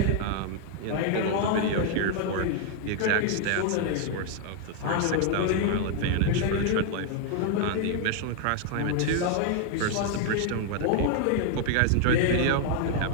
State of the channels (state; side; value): different; both; correlation 0.00